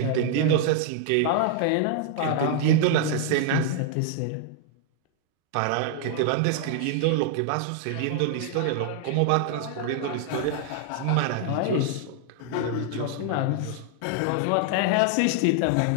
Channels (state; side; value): different; both; correlation 0.00